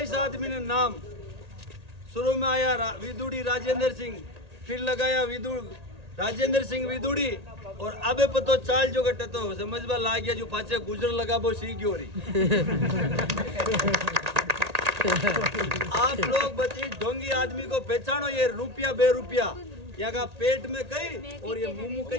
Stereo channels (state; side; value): late; left; 1.8 ms